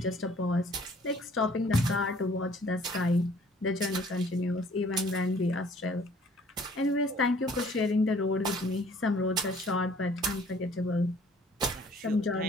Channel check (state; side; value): normal; both; correlation 0.56